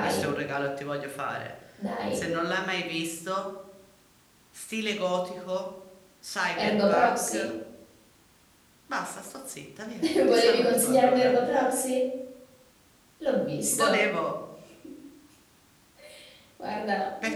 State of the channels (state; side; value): identical; both; correlation 1.00